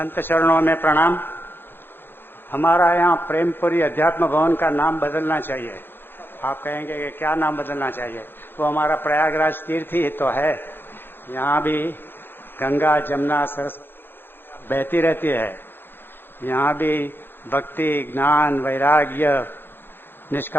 चरणों में प्रणाम। हमारा यहाँ प्रेमपुरी अध्यात्म भवन का नाम बदलना चाहिए। आप कहेंगे कि क्या नाम बदलना चाहिए? वो हमारा प्रयागराज तीर्थ ही तो है। यहाँ भी गंगा जमुना सरस बहती रहती है। यहाँ भी भक्ति, ज्ञान, वैराग्य,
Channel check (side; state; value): right; late; 0.10 ms